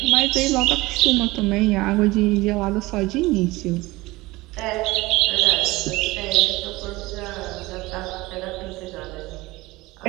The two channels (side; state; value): left; quieter; 20.5 dB